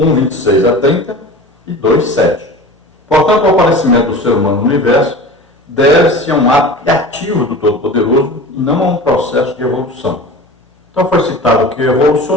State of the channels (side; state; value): both; normal; correlation 0.35